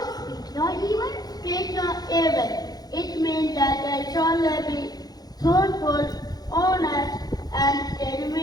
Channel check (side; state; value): right; late; 0.19 ms